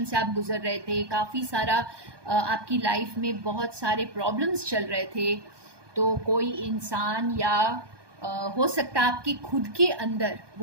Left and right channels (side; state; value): left; late; 1.2 ms